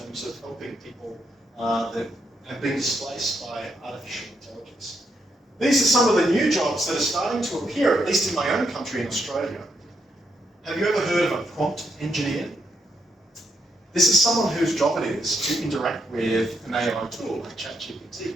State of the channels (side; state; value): both; normal; correlation 0.79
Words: of helping people that have been displaced by artificial intelligence? These are some of the new jobs that are starting to appear, at least in my own country in Australia. Have you ever heard of a prompt engineer? This is someone whose job it is to interact with an AI tool like ChatGPT